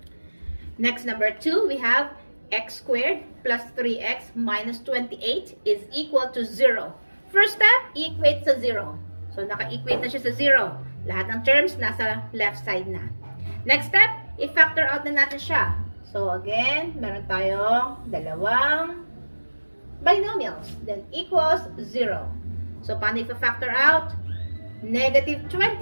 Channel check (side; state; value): both; inverted; correlation -1.00